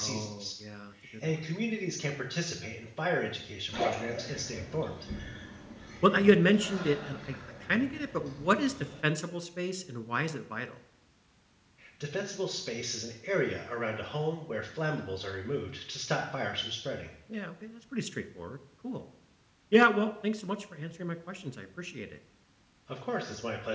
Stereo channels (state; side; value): identical; both; correlation 1.00